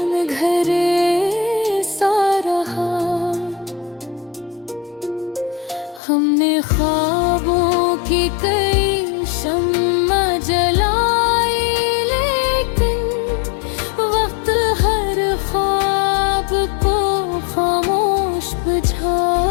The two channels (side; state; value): right; drops out; at 6.0 s